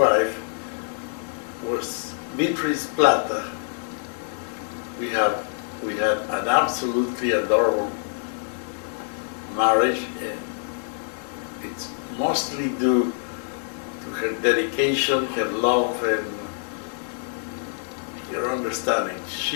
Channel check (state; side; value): silent; right; digital silence